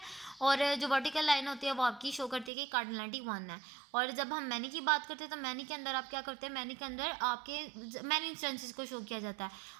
और जो वर्टिकल लाइन होती है वो आपकी शो करती है कि कार्डिनलिटी 1 है। और जब हम मैनी की बात करते हैं तो मैनी के अंदर आप क्या करते हैं, मैनी के अंदर आपके मैनी इंस्टेंसेस को शो किया जाता है,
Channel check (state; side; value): drops out; left; at 2.5 s